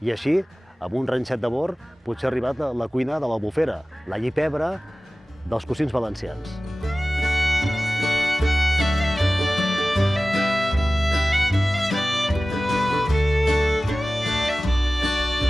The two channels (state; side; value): normal; both; correlation 0.96